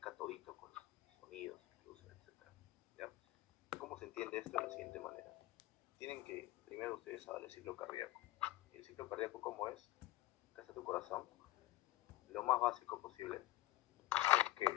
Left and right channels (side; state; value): right; quieter; 16.9 dB